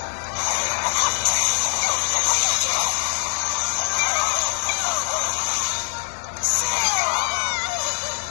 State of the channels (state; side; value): silent; right; 64 dB below the other